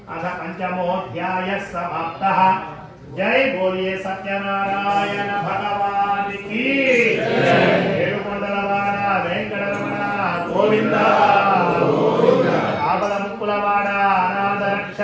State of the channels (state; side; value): identical; both; correlation 1.00